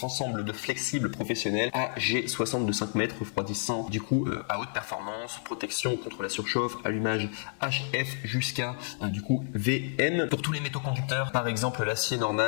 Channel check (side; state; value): right; silent; digital silence